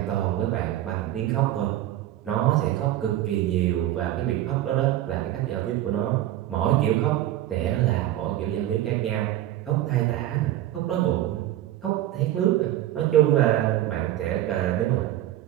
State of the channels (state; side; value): quieter; left; 13.5 dB